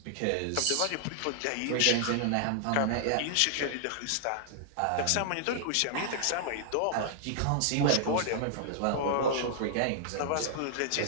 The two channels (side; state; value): both; different; correlation -0.01